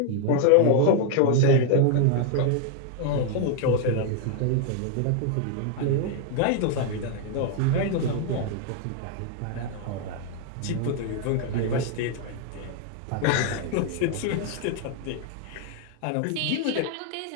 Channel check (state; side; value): different; both; correlation 0.00